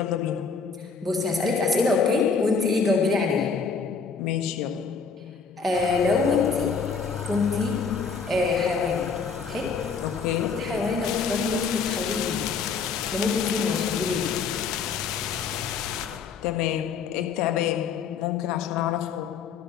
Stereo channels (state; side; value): quieter; right; 5.4 dB